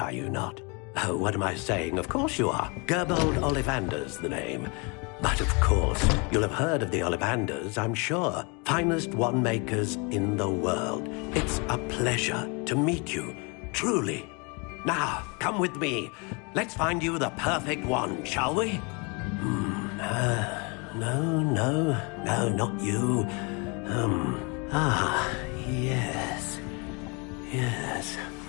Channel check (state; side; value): quieter; right; 31.5 dB